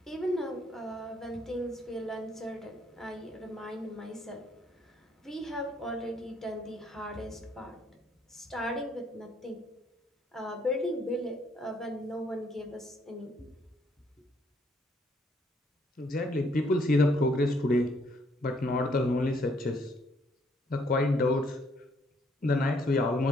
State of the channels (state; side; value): normal; both; correlation 0.68